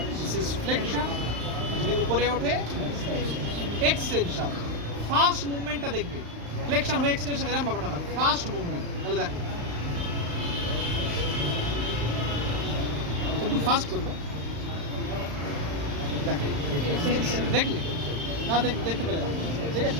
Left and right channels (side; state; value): left; late; 35 ms